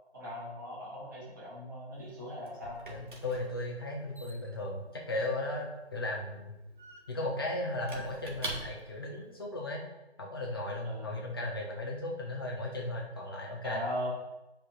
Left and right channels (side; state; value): both; normal; correlation 0.04